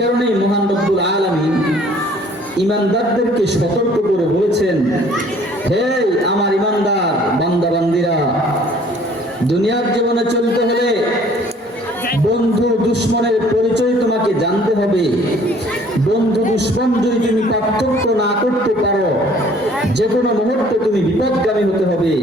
মহান রব্বুল আলামিন ঈমানদারদেরকে সতর্ক করে বলেছেন, হে আমার ঈমানদার বান্দা বান্দীরা, দুনিয়ার জীবনে চলতে হলে বন্ধু দুশমনের পরিচয় তোমাকে জানতে হবে। বন্ধু দুশমন যদি তুমি পার্থক্য না করতে পারো, যে কোনো মুহূর্তে তুমি বিপদগামী হতে হবে,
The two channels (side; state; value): both; normal; correlation 0.55